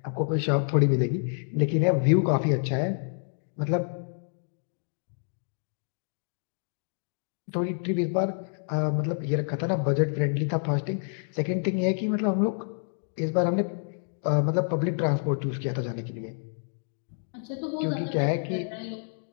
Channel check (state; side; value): silent; right; digital silence